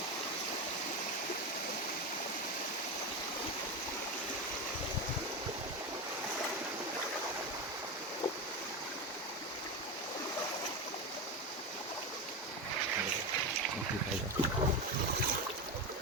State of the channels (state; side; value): normal; both; correlation 0.17